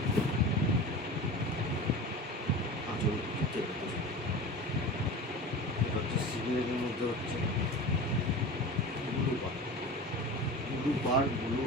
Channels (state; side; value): normal; both; correlation 0.33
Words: আঁচল তুতের ভেতর। এটা হচ্ছে সিগনেটের মধ্যে হচ্ছে ব্লু পার ব্লু